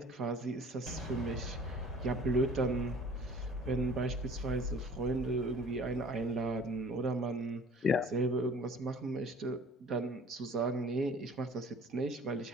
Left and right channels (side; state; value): both; normal; correlation 0.49